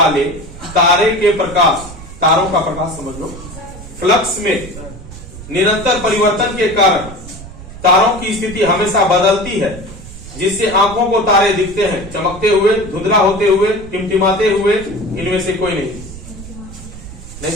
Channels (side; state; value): right; noise; rumble, 14 dB below the sound